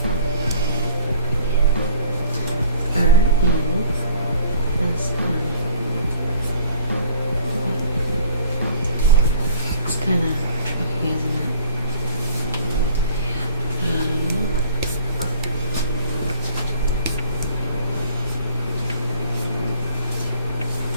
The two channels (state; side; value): inverted; both; correlation -0.53